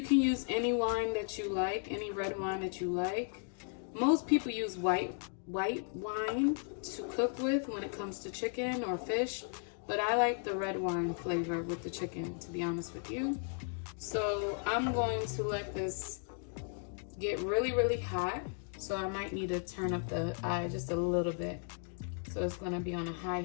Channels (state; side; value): silent; right; 54 dB below the other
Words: can use any wine that you like, any red wine that you like. Most people use white wine to cook with when it comes to chicken or fish, but I like the red wine flavor with the chicken, to be honest with you. So I'm going to let this get really, really hot. So I might need to turn up the eye just a little bit. So it's going to be on a high